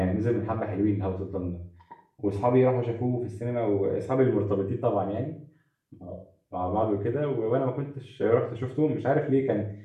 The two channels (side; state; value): both; identical; correlation 1.00